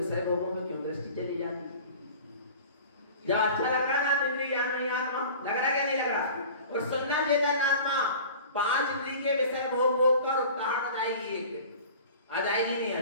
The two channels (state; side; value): inverted; both; correlation -0.41